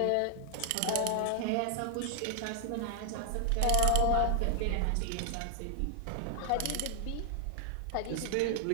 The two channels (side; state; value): both; different; correlation 0.00